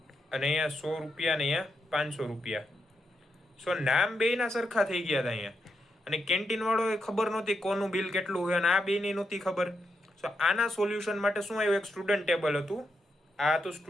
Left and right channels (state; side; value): normal; both; correlation 0.83